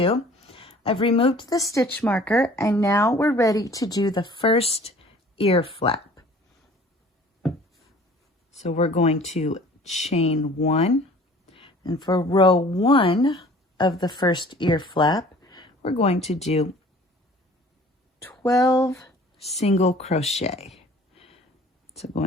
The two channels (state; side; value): normal; both; correlation 0.50